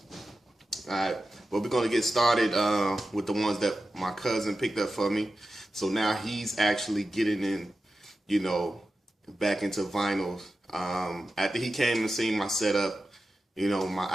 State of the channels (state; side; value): normal; both; correlation 0.92